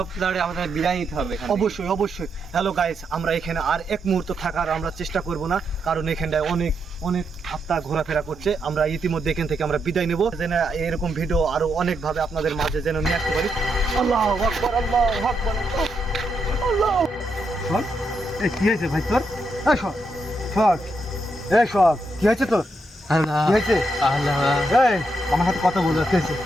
তাড়াতাড়ি আমাদের বিদায় নিতে হবে এখান থেকে। অবশ্যই অবশ্যই। হ্যালো গাইস, আমরা এখানে আর এক মুহূর্ত থাকার আমরা চেষ্টা করব না, কারণ এখানটায় অনেক অনেক আত্মা ঘোরাফেরা করছে। আমরা ইতিমধ্যে এখান থেকে আমরা বিদায় নেব, যেন এরকম ভিডিও আরো অনেক ভাবে আপনাদের মাঝে যেন নিয়ে আসতে পারি। আল্লাহ আকবার, আল্লাহ আকবার, আল্লাহ। শোন, এই কি হয়েছে ভাই তোর? এই শোন, শোন, এই শোন, কি হয়েছে তোর? আল্লাহ কি হয়েছে? আল্লাহ এই আমার সাথে কথা বলে হয়েছে।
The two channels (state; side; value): normal; both; correlation 0.81